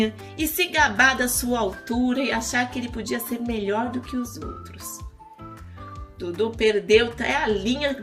e se gabar da sua altura e achar que ele podia ser melhor do que os outros. Dudu perdeu até a linha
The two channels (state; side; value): identical; both; correlation 1.00